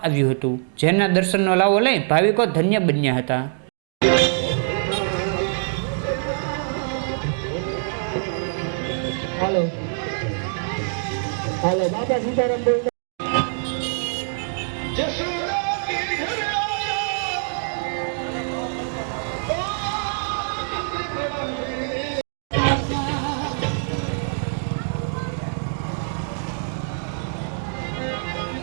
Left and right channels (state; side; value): silent; left; digital silence